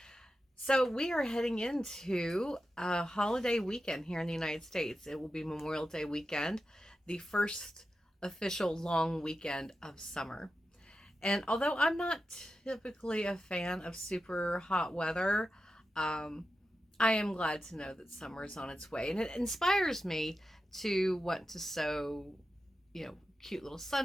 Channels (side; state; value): both; normal; correlation 0.91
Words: So we are heading into a holiday weekend here in the United States. It will be Memorial Day weekend, the first official long weekend of summer. And although I'm not typically a fan of super hot weather, um, I am glad to know that summer is on its way. And it inspires me to want to sew, cute little